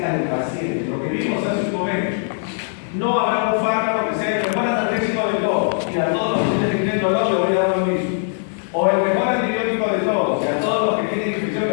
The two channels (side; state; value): right; silent; 65 dB below the other